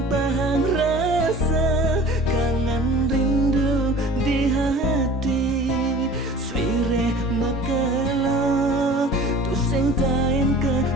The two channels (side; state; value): both; normal; correlation 0.43